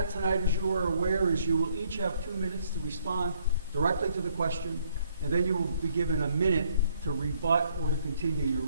tonight, as you are aware, is you will each have 2 minutes to respond directly to the question, and then you will be given a minute to rebut or to continue your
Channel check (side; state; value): both; inverted; correlation -0.67